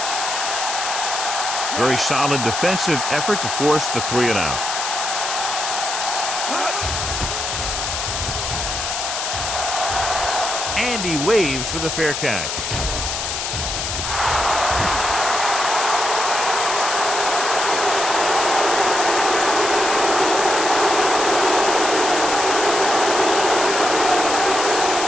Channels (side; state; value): left; noise; hiss, 3 dB below the sound